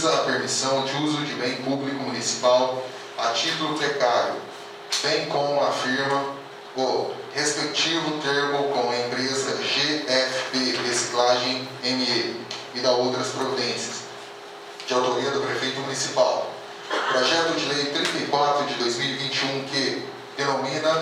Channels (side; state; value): both; identical; correlation 1.00